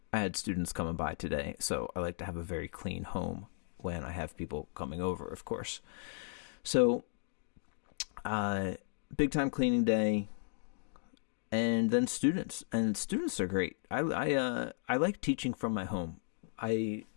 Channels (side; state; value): right; silent; digital silence